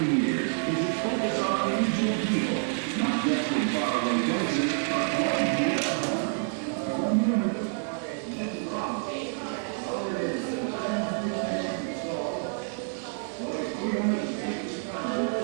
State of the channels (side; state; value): left; silent; 59 dB below the other